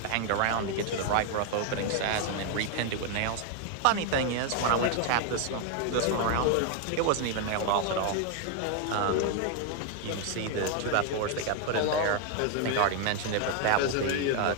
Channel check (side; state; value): both; different; correlation 0.01